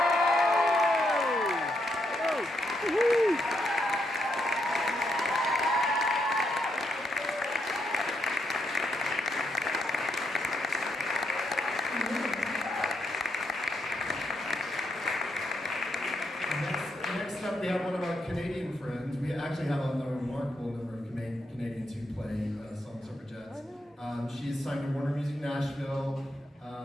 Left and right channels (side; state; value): both; normal; correlation 0.79